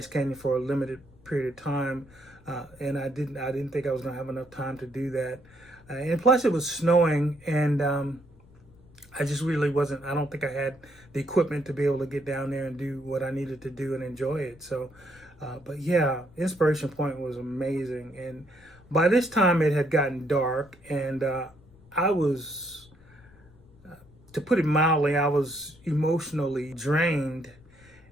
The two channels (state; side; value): noise; left; rumble, 26 dB below the sound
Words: Canyon for a limited period of time, and I didn't think I was going to have enough time to do that. And plus, it was snowing, and I just really wasn't. I don't think I had the equipment to be able to get down there and do what I needed to do and enjoy it. So, but yeah, Inspiration Point was amazing. And by this time, it had gotten dark, and I was, to put it mildly, I was emotionally drained